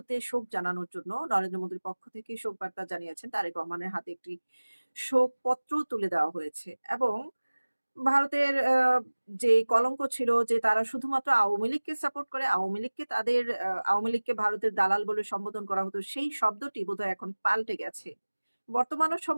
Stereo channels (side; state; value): both; inverted; correlation -1.00